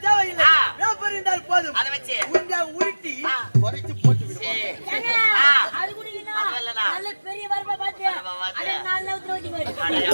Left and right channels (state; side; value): inverted; both; correlation -1.00